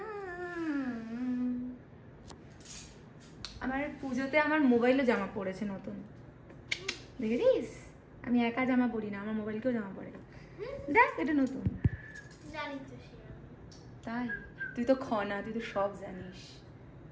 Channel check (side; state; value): both; identical; correlation 1.00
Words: আমার পুজোতে আমার মোবাইলও জামা পড়েছে নতুন, দেখেছিস? আমি একা জামা পরি না, আমার মোবাইলকেও জামা পড়ে। দেখ এটা নতুন। তাই তুই তো খনা, তুই তো সব জানিস।